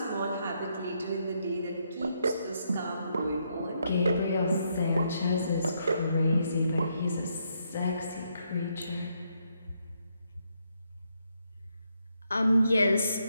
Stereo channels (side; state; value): both; inverted; correlation -0.77